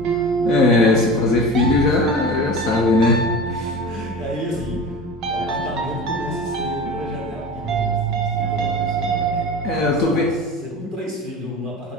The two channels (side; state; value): both; normal; correlation 0.33